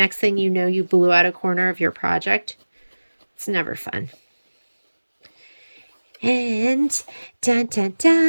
thing you know, you blew out a corner of your project. It's never fun. And dun dun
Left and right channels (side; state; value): both; inverted; correlation -1.00